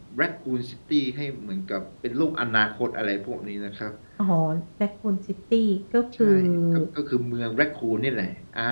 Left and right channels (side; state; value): both; inverted; correlation -1.00